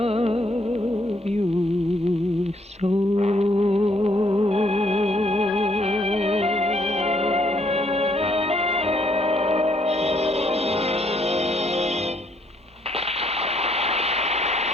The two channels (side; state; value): both; normal; correlation 0.69